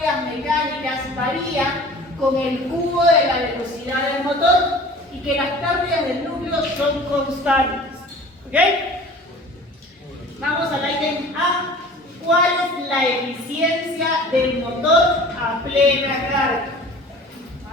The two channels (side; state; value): both; normal; correlation 0.44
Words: mecánicas varían con el cubo de la velocidad del motor y que las pérdidas del núcleo son constantes. ¿Ok? Vamos al ítem A. ¿Cuál es la eficiencia del motor a plena carga?